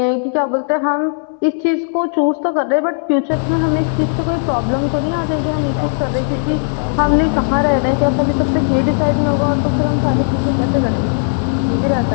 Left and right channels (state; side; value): silent; right; 68 dB below the other